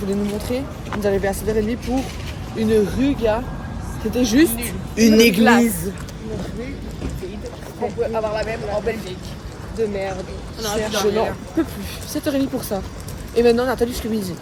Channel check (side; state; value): both; identical; correlation 1.00